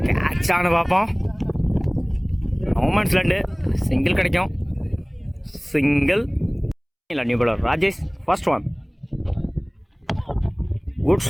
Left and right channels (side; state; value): both; identical; correlation 1.00